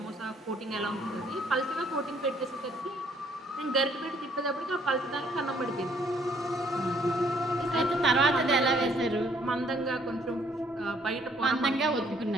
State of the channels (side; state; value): both; normal; correlation 0.64